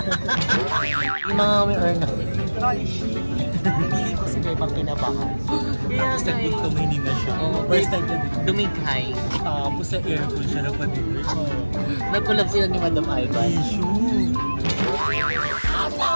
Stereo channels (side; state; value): both; inverted; correlation -1.00